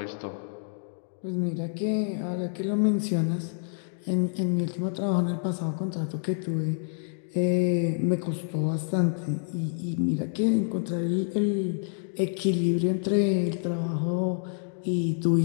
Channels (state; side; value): silent; right; digital silence